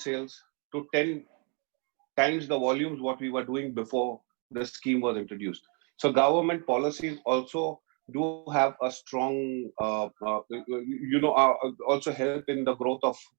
to 10 times the volumes what we were doing before the scheme was introduced. So government policies also do have a strong, also help in the growth of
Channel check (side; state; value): left; quieter; 36.4 dB